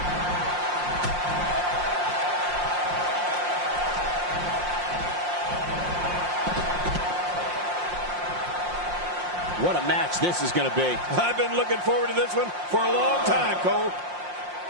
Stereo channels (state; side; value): late; left; 5.7 ms